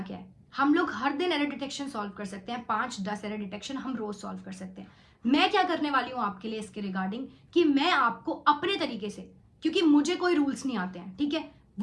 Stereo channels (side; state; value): both; identical; correlation 1.00